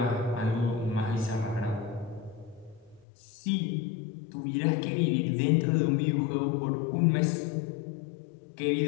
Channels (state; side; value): drops out; right; at 3.1 s